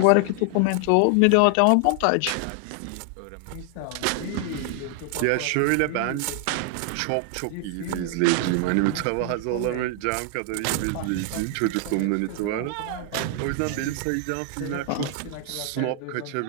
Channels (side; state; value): both; different; correlation 0.00